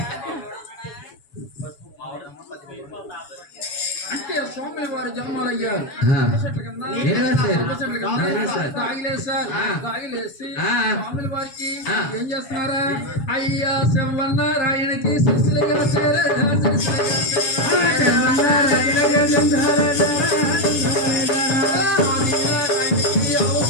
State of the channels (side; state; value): right; late; 7.1 ms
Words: అంటే స్వామి వారి జన్మలు అయ్యారు. తాగిలేసి స్వాముల వారికి ఏం చేస్తున్నారా? అయ్యా శివన్నారాయణకి శిశులుగా